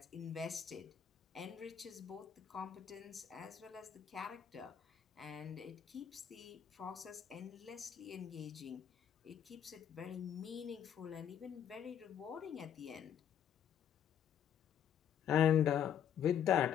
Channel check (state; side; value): quieter; right; 9.2 dB